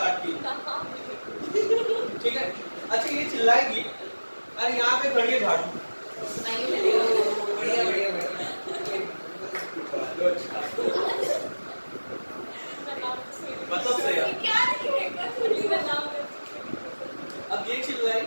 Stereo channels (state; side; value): inverted; both; correlation -1.00